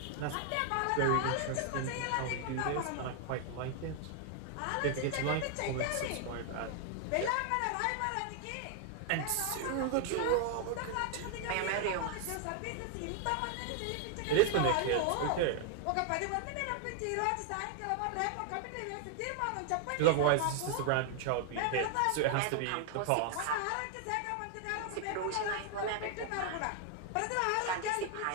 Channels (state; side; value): different; both; correlation 0.00